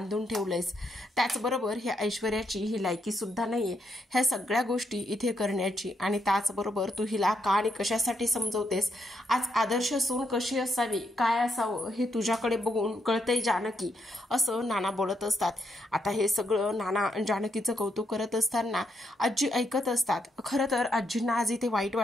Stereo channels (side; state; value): both; normal; correlation 0.79